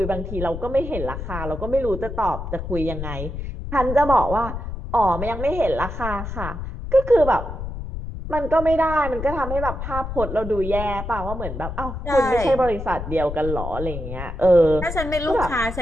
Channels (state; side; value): noise; left; rumble, 7 dB below the sound